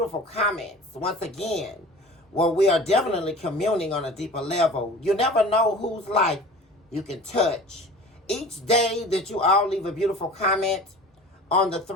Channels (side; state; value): both; normal; correlation 0.40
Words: comments. Once again, where we are definitely communing on a deeper level. You never know whose life you can touch. Each day that you all leave a beautiful comment on the